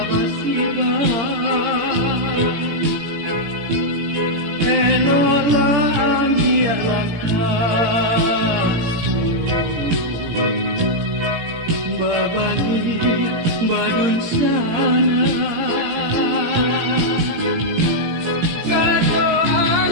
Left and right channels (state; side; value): late; left; 18 ms